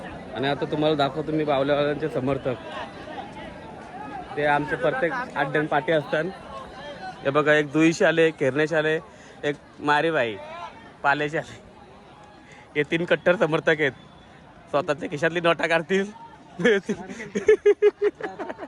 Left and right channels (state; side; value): identical; both; correlation 1.00